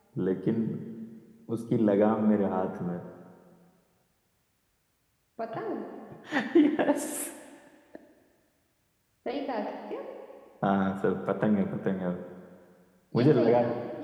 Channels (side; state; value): both; identical; correlation 1.00